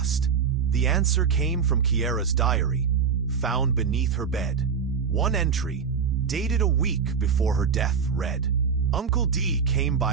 The answer came from Kiera's diary, found beneath her bed. One entry, dated a week before her death, read, "Uncle D came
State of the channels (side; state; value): left; quieter; 6.2 dB